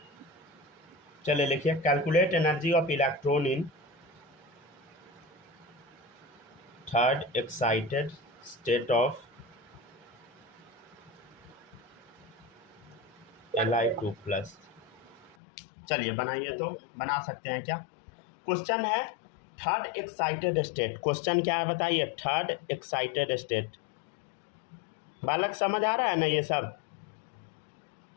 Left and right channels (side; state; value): right; drops out; at 15.4 s